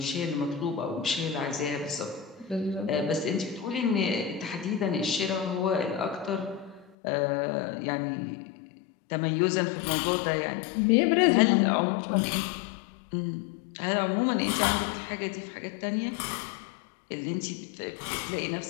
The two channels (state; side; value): drops out; right; at 7.0 s